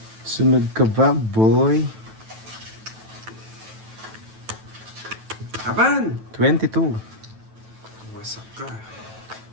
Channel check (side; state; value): left; late; 9.1 ms